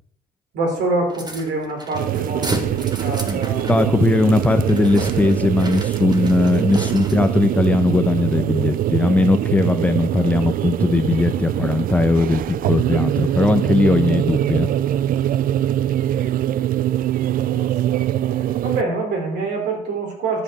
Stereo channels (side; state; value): both; normal; correlation 0.68